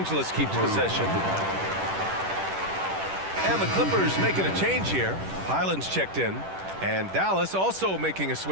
keeps possession. And the Clippers making a change here. Highland's checked in. And Dallas also making a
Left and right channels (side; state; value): left; late; 10 ms